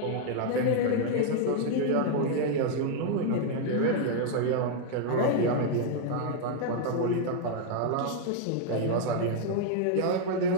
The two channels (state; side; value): different; both; correlation 0.00